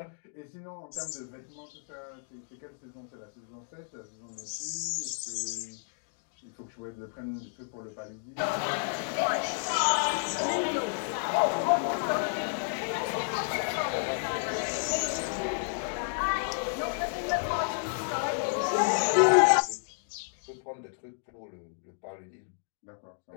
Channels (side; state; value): right; silent; digital silence